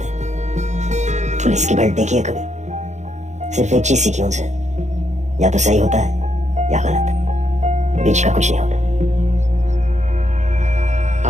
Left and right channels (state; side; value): late; left; 0.34 ms